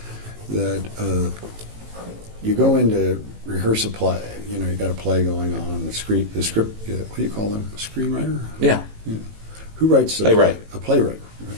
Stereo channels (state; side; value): late; left; 18 ms